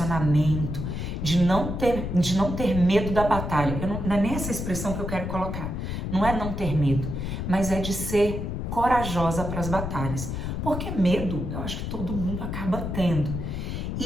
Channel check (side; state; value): left; noise; rumble, 4 dB below the sound